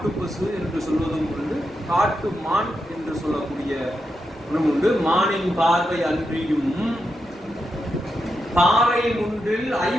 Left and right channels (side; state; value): both; normal; correlation 0.86